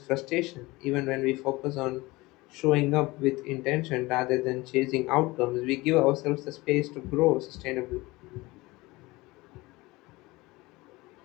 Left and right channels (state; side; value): quieter; right; 21.5 dB